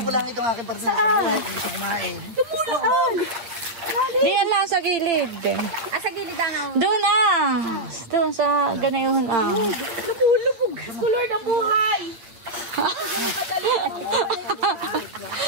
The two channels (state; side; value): late; left; 9.1 ms